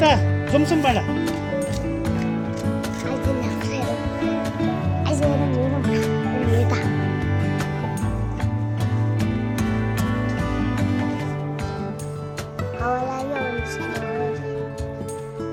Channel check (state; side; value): identical; both; correlation 1.00